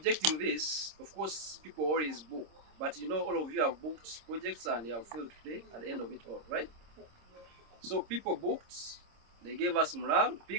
this, of course, people always book. But you know, all of you have booked projects and they have failed to pay at the end of it all, right? So people booked, they gave us morale,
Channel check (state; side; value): late; left; 26 ms